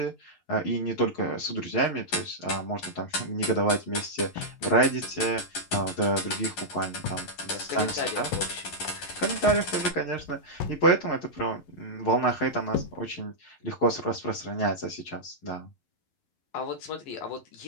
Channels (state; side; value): late; right; 11 ms